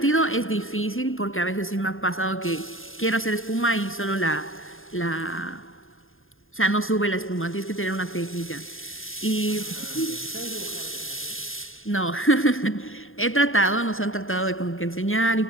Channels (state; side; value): late; right; 0.59 ms